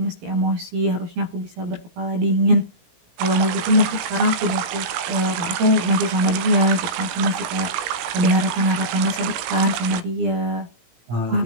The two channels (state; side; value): late; left; 18 ms